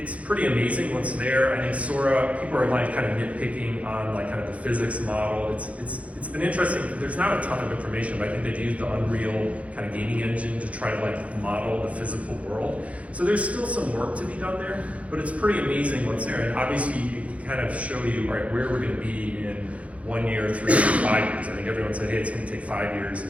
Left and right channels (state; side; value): late; left; 0.065 ms